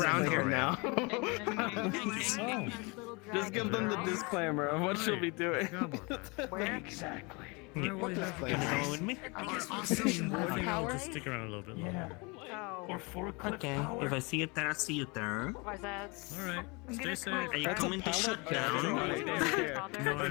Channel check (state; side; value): quieter; right; 28.8 dB